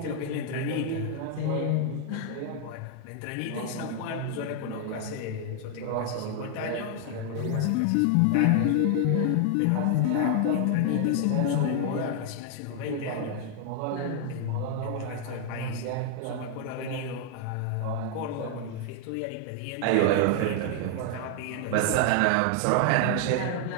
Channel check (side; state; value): both; different; correlation 0.00